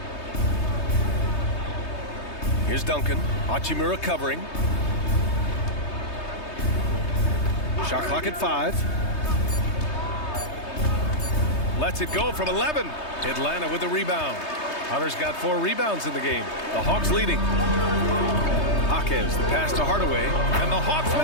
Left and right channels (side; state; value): right; late; 3.2 ms